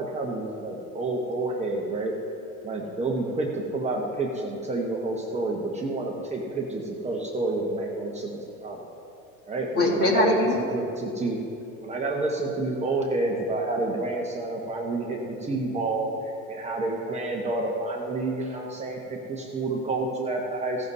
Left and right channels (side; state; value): both; normal; correlation 0.35